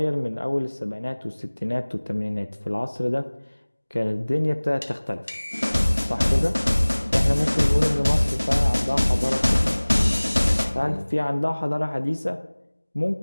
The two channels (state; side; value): inverted; both; correlation -1.00